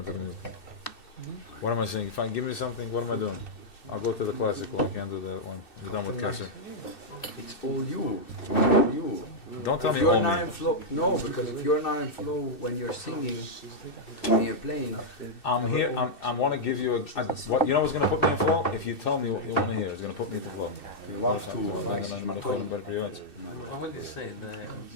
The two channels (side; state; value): right; late; 2.6 ms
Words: the mood. What am I saying? If I give me something, what am I doing? I'll go to the classical. I can't do that one. You're done with Kesser. It's all you. All you. Don't tell if me you're all not me. in flow, no, because if you're not in flow when you're singing, when you're playing, I'm here. I want to give you what you know what's going to put me in flow? If you tell me what you want to hear, it's going to put me into flow. you have to. I want to say